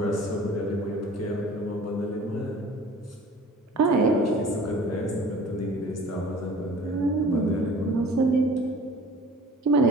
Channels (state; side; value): normal; both; correlation 0.45